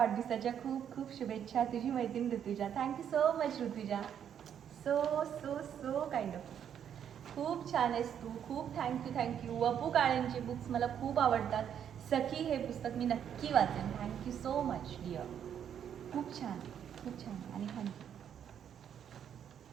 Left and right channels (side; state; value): left; quieter; 8.9 dB